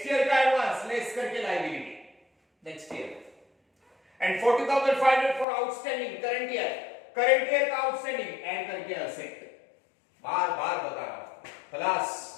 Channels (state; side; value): drops out; right; at 5.5 s